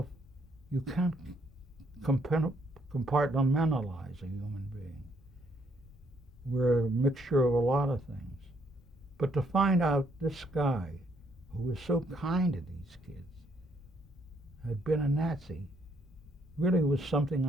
you can't compartmentalize a human being. We're a mixture of a lot of things. But to find out this guy, who was so kind to these kids, had been a Nazi, really was something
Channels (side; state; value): both; normal; correlation 0.71